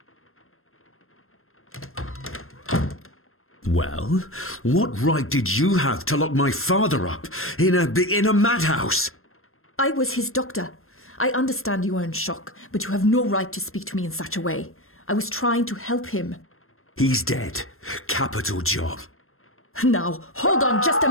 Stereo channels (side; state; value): right; late; 0.62 ms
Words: Well, what right did you have to lock my father up in a madhouse? I was his doctor. I understand you are in shock, but you have no right to speak to me in such a way. I was trying to help him. He's dead. Capital job. Now, hold on just a